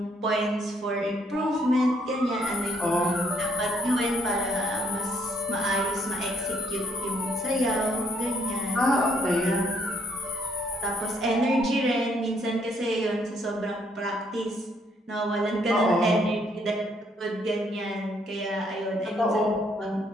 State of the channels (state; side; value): normal; both; correlation 0.69